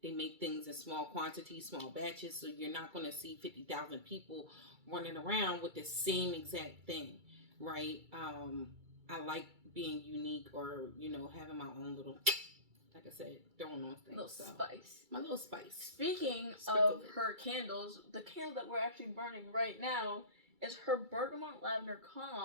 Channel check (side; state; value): left; late; 2.3 ms